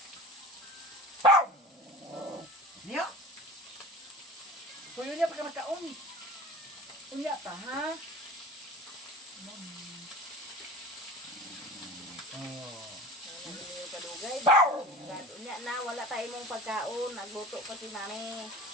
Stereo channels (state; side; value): normal; both; correlation 0.37